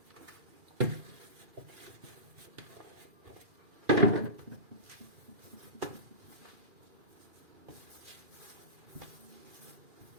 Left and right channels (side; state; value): left; late; 2.4 ms